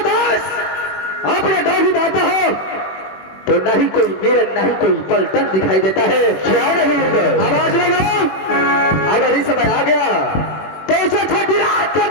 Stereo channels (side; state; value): right; late; 21 ms